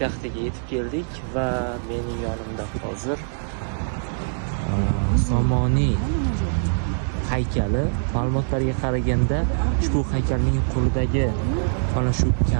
yetib keldik va mening yonimda hozir Somoniy haykali. Ma'lumotlarga qaraganda ushbu haykalning qo'lidagi mana shu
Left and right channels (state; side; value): silent; left; digital silence